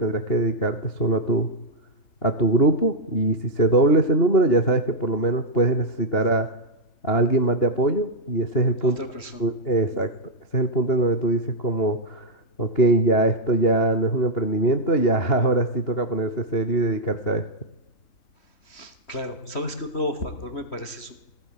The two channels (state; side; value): late; right; 3.1 ms